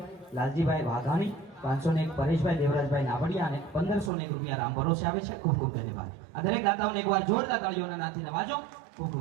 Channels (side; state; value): left; drops out; at 4.1 s